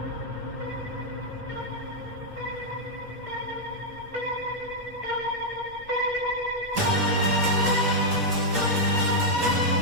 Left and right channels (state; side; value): normal; both; correlation -0.04